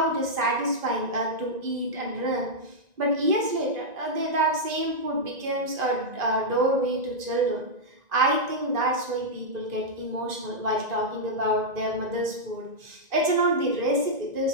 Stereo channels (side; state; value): left; late; 1.9 ms